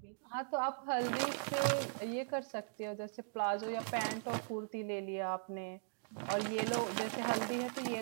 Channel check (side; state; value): left; silent; digital silence